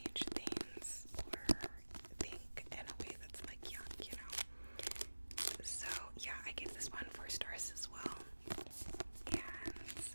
things or think in a way that's like young, you know. So yeah, I gave this one 4 stars as well, and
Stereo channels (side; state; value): both; inverted; correlation -1.00